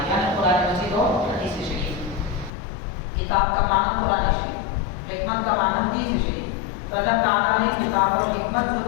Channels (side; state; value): right; drops out; at 2.5 s